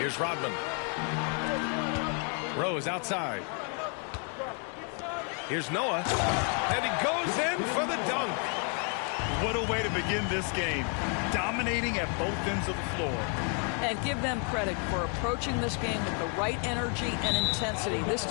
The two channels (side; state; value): right; quieter; 38.7 dB